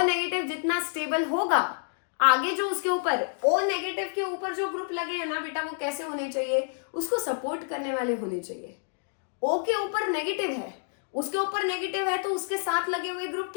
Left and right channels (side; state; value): right; silent; digital silence